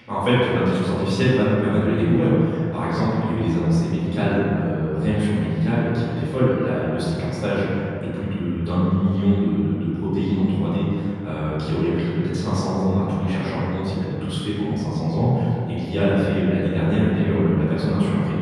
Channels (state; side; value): identical; both; correlation 1.00